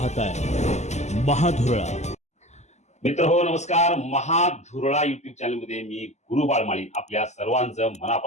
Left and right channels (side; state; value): right; late; 0.33 ms